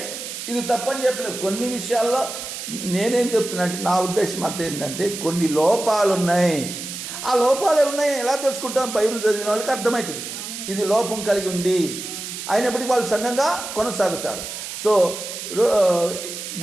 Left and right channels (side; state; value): right; noise; hiss, 8 dB below the sound